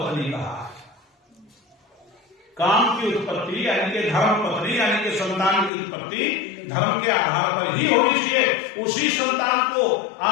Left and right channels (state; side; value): drops out; right; at 5.7 s